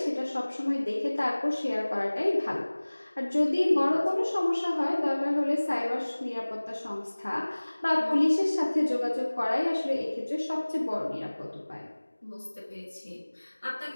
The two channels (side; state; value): both; inverted; correlation -1.00